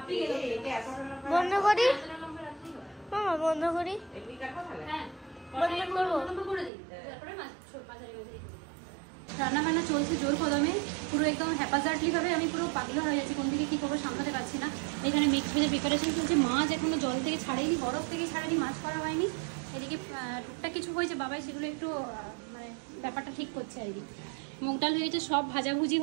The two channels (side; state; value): left; drops out; at 6.7 s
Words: বন্ধ করি মামা, বন্ধ করি। হ্যাঁ, রান্না বান্না চলছে জোর কদমে, পুরো একদম হ্যাপাজার্টলি ভাবে। আমি পুরো পাগলা হয়ে যাচ্ছি, কোন দিকে কি করবো সামলাতে পারছি না। এখানে মিক্স ভেজের প্রিপারেশন চলছে। মাছ এখনো জল থেকে ছাড়েনি, বরফ থেকে ছাড়েনি, মাছ করা হয়নি। এদিকে টুকটাক কিছু হয়েছে, বাবাই সেগুলো একটু মানে ব্যাপারটা ঠিক করছে আর কি। মুগ ডাল হয়ে গেছে, সব ভাজাভুজি